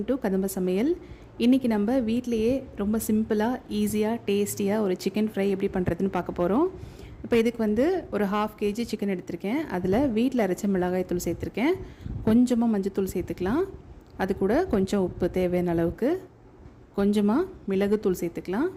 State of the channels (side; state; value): both; identical; correlation 1.00